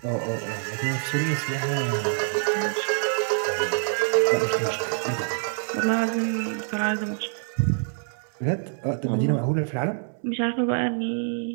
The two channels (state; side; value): silent; left; 61 dB below the other